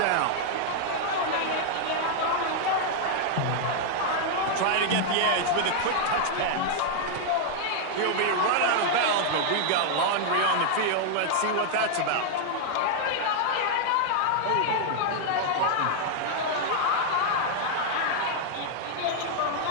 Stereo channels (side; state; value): both; different; correlation 0.00